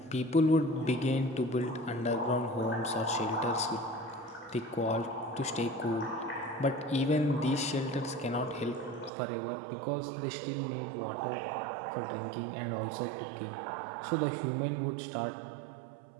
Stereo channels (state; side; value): drops out; left; at 9.1 s